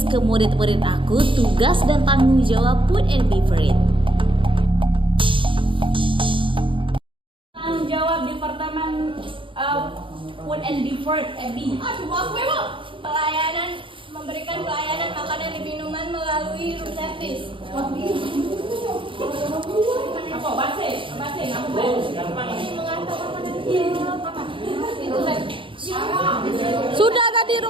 ke murid-murid aku, tugas dan tanggung jawab Food and Beverage. Tanggung jawab Departemen Food and Beverage FB. Pelayanan, memberikan pelayanan makanan dan minuman melalui room service. Apa? Base, ngaku base. Ini mengantar makanan apa? Itu Sudah tadi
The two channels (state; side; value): late; left; 0.25 ms